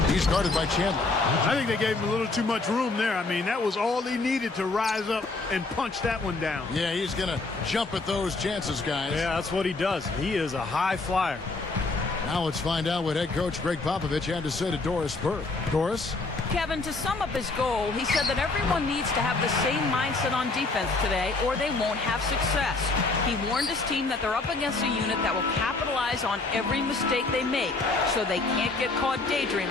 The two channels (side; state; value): right; quieter; 3.5 dB